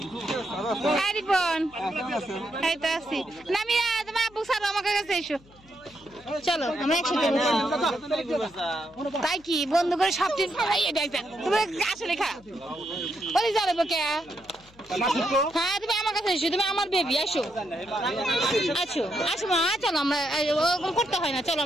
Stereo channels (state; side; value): noise; left; hum, 26 dB below the sound